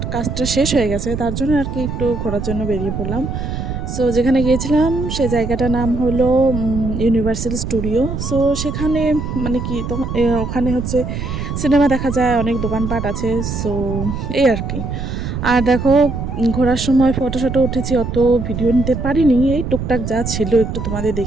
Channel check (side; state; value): right; noise; rumble, 4 dB below the sound